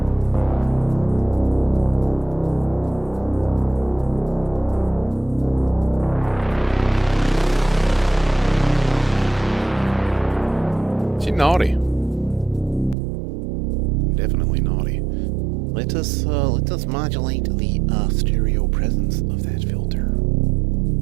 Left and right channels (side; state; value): left; drops out; at 13.0 s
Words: Is he naughty? Definitely naughty. Let us modulate the stereo presence of that filter.